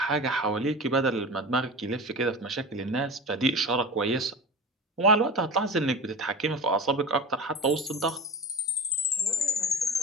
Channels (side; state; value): both; normal; correlation 0.30